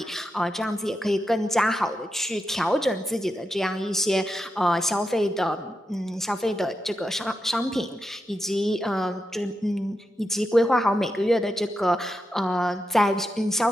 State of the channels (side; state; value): both; normal; correlation 0.87